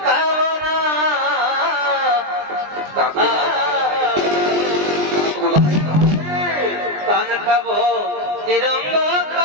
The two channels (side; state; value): left; late; 20 ms